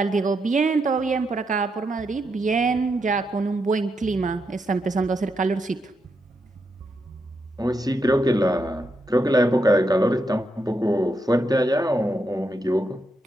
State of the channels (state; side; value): normal; both; correlation 0.82